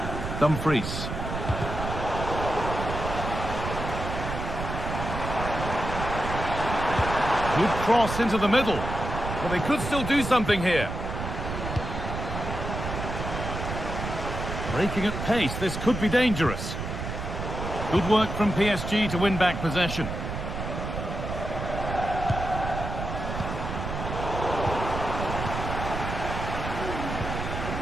Dumfries. Good cross into the middle. Well, they could still do something here. Breaking at pace, this could be dangerous. Good work from PSG to win back possession.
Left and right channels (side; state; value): right; noise; rumble, 5 dB below the sound